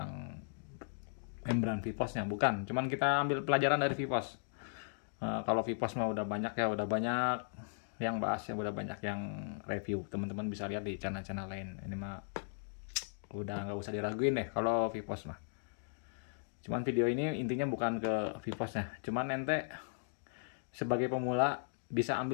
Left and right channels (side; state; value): right; silent; digital silence